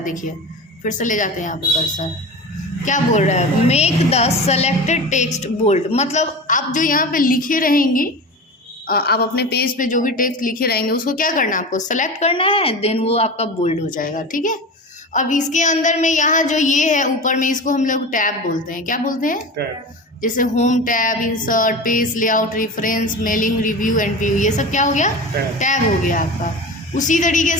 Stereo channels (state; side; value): normal; both; correlation 0.30